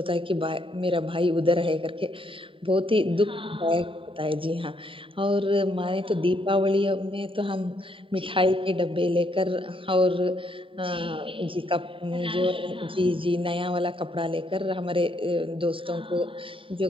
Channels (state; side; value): late; left; 0.25 ms